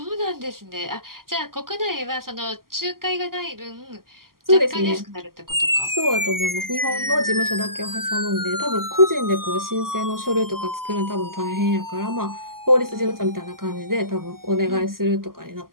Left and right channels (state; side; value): late; left; 0.92 ms